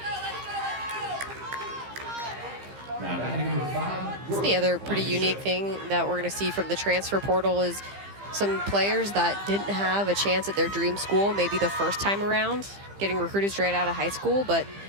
Now batting number 5. That's the other pretty unique thing that we're going to see from the transfer portal is some players that didn't have a chance at their dream school, maybe the first time around, getting recruited straight out of high school, but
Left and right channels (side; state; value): left; late; 15 ms